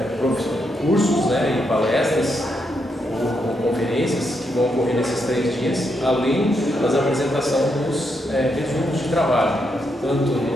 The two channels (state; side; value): normal; both; correlation 0.80